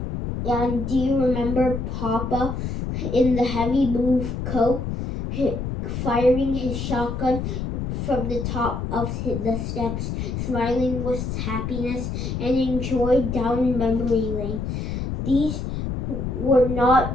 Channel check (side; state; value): left; noise; rumble, 4 dB below the sound